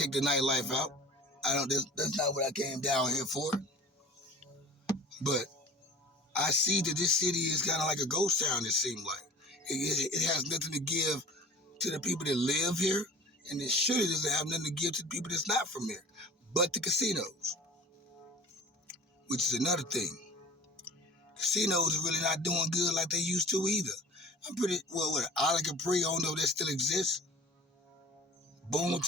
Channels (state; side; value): normal; both; correlation 0.42